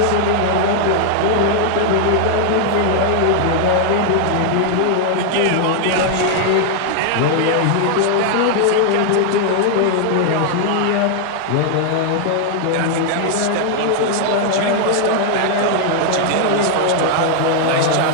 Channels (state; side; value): different; both; correlation 0.00